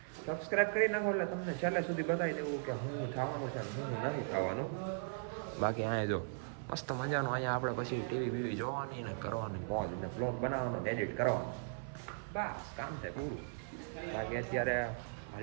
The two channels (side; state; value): left; silent; 52 dB below the other